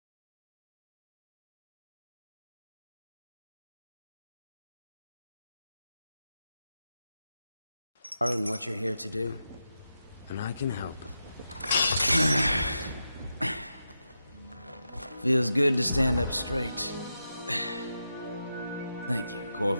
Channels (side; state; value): both; inverted; correlation -0.88